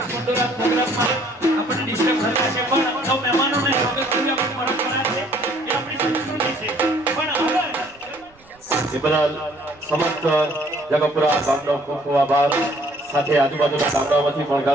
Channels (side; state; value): right; noise; rumble, 30 dB below the sound